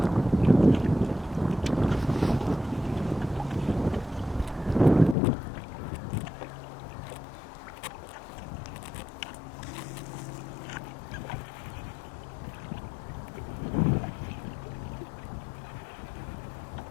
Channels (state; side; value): drops out; right; at 5.2 s